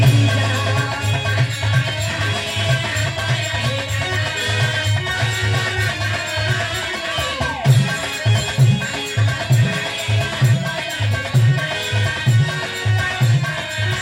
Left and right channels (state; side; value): identical; both; correlation 1.00